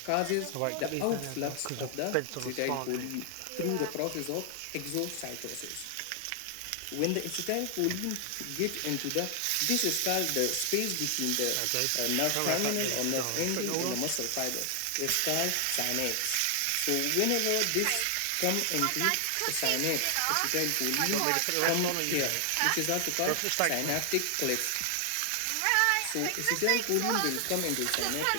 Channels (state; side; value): different; both; correlation 0.00